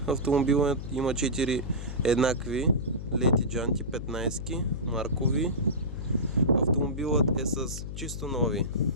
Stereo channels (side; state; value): left; noise; hum, 7 dB below the sound